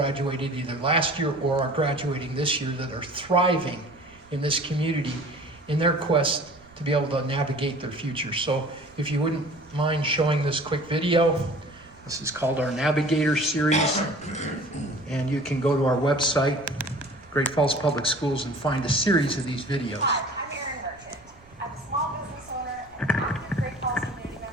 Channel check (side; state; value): right; noise; rumble, 27 dB below the sound